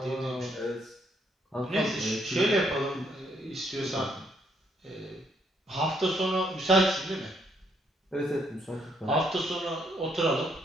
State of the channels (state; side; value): normal; both; correlation 0.72